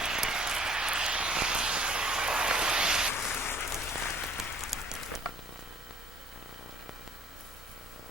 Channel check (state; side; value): normal; both; correlation 0.55